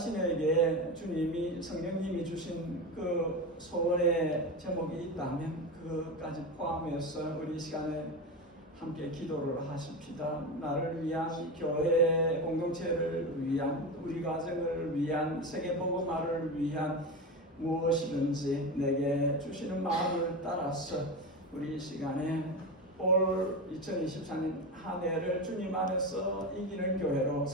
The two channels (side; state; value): both; normal; correlation 0.21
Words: 주님이 성령님이 주신 그 소원의 제목이 있다면 그것까지 포함해서 우리 시간에 함께 기도를 하십시다. 나를 위한, 교회 공동체를 위한, 우리 가정을 위한, 세계복음화를 위한 무엇이든지 내게 주시는 마음을 따라서 우리 시간에 올 2024년 한 해를 주님 안에서 이기는 교회로,